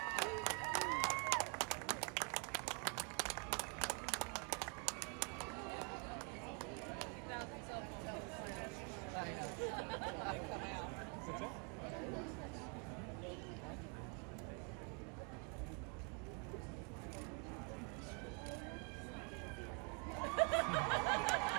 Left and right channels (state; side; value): quieter; left; 34.8 dB